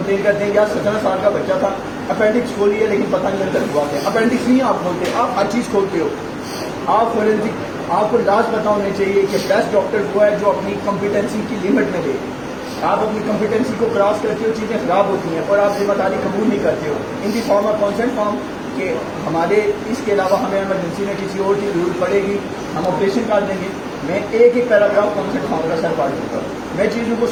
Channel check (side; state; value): both; identical; correlation 1.00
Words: کرتے ہیں یار 17 سال کا بچہ تھا، اپینڈکس کھولی ہے لیکن پتہ نہیں اندر ہوا کیا. اپینڈکس نہیں آپ کھولتے، آپ ہر چیز کھولتے ہو. آپ فورینسک، آپ کو لاز پتا ہونے چاہیے کہ بیسٹ ڈاکٹر وہ ہے جو اپنی کمپیٹنسی کی لمٹ میں دے. آپ اپنی کمپیٹنسی کو کراس کرتے ہو، چیزیں خراب ہوتی ہیں اور آپ ذمہ داری قبول نہیں کرتے ہو. ان دی فارم آف کانسنٹ فارم کہ ہمارے اس کے علاوہ ہمیں ایمرجنسی میں کسی اور کی ضرورت پڑے گی، ہم آپریشن کر دیں گے. میں ایک ایک پیراگراف کانسنٹ فارم کا سر پڑھ دوں گا، میں چیزوں کو